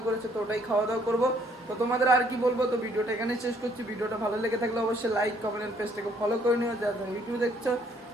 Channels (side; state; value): both; normal; correlation 0.65